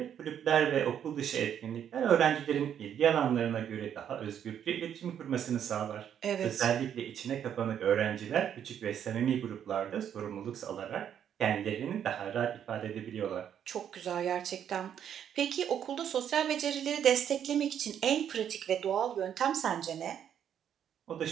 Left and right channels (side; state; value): left; quieter; 9.2 dB